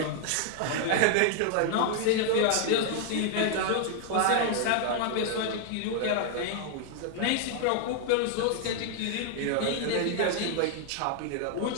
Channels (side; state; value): both; different; correlation 0.00